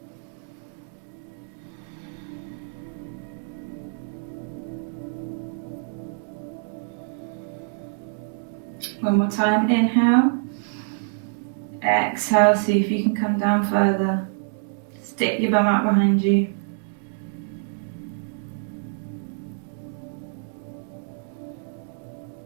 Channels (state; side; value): silent; left; digital silence